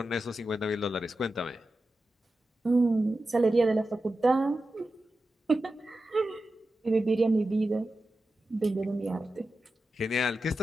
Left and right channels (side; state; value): both; normal; correlation 0.92